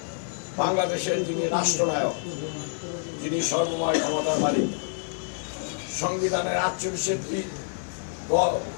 বাংলাদেশের যিনি রাষ্ট্রনায়ক, যিনি সর্বময় ক্ষমতার মালিক, সংবিধানের 48টি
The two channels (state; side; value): silent; right; digital silence